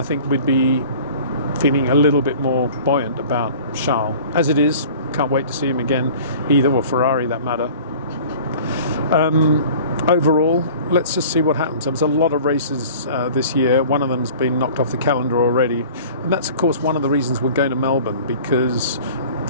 think we'd be feeling a little bit more buoyant about Charles. As it is, can't wait to see him again, either, or Ferrari that matter. Overall, let's just see what happens. There's a lot of races this year. One of them's been knocked off the calendar already. And that's, of course, one of the reasons we're going to Melbourne, because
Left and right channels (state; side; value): inverted; both; correlation -0.45